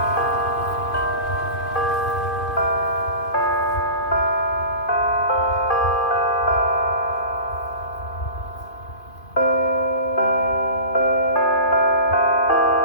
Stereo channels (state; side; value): late; right; 2.5 ms